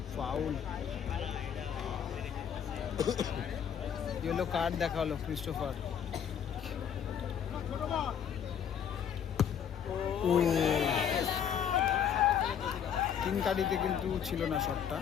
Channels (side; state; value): right; quieter; 8.3 dB